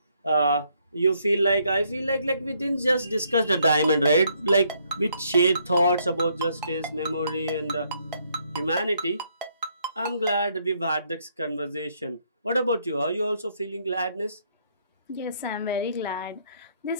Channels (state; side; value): inverted; both; correlation -0.71